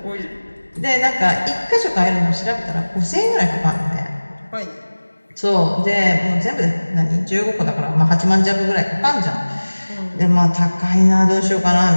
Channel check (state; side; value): inverted; both; correlation -1.00